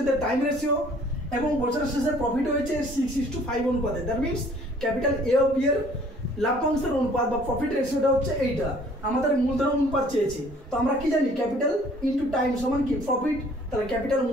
টাইম রেশিও, এবং বছরের শেষে প্রফিট হয়েছে 6:5 অনুপাতে। দ্যাট মিনস ক্যাপিটাল এ ও বি এর লাভ্যাংশের অনুপাত বা প্রফিট রেশিওটা হচ্ছে এইটা। আমাদের মূলধন অনুপাত চেয়েছে, তো আমরা কি জানি ক্যাপিটাল ইনটু টাইম সমান কি প্রফিট। তাহলে ক্যাপিটাল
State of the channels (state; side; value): normal; both; correlation 0.56